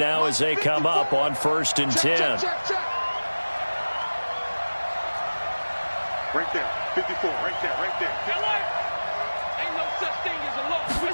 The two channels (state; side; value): inverted; both; correlation -1.00